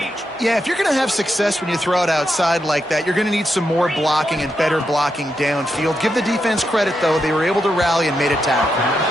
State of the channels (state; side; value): normal; both; correlation 0.84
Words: Yeah, if you're going to have success when you throw it outside like that, you're going to need some more blocking and better blocking downfield. Give the defense credit, though. They were able to rally and made a tackle.